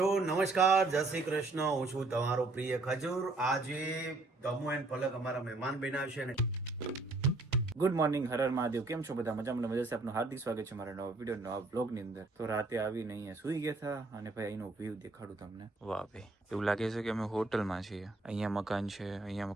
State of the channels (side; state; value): left; quieter; 3.3 dB